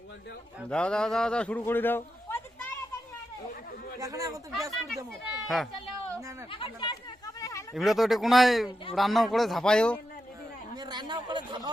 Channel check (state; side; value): normal; both; correlation 0.87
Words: দাও দাও দাও দাও দাও শুরু করে দাও। প্রদীপ তাড়াতাড়ি এখন এখন তো ব্যাস করে দেবো। হ্যাঁ না না এমনি তো এটা কোনায় রান্নাও করে ঝাপাইও, আমি রান্নাও করে